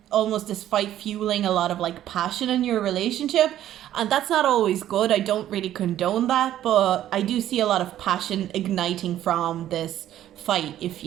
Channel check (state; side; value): quieter; left; 12.2 dB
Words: almost this fight fueling a lot of like passion in your relationship, and that's not always good. I don't really condone that, but I do see a lot of passion igniting from this fight, if